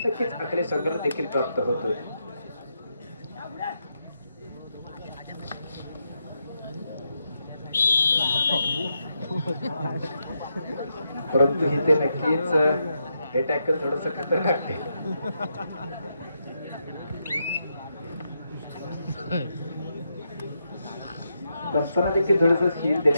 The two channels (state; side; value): inverted; both; correlation -0.83